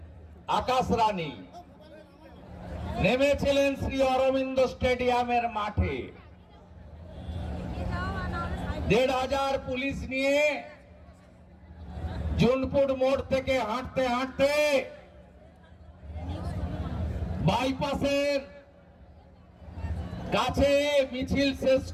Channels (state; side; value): identical; both; correlation 1.00